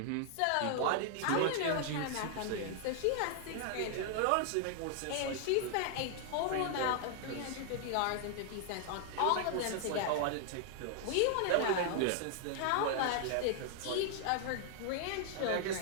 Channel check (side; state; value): both; different; correlation 0.00